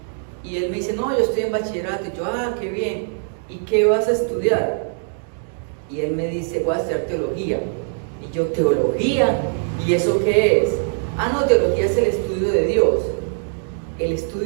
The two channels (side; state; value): left; silent; 65 dB below the other